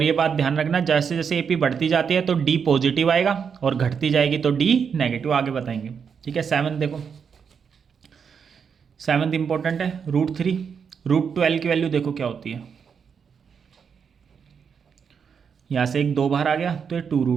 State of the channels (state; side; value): quieter; left; 6.6 dB